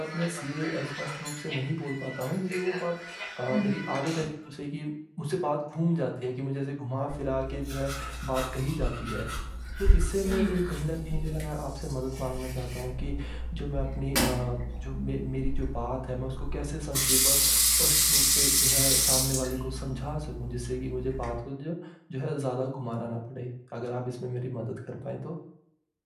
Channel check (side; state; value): both; identical; correlation 1.00